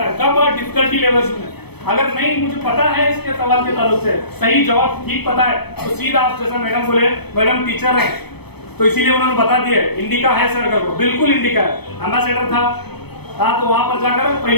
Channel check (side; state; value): right; late; 0.97 ms